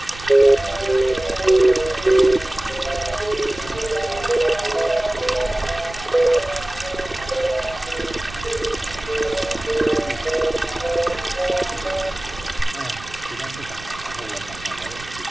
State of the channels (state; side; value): noise; right; rumble, 16 dB below the sound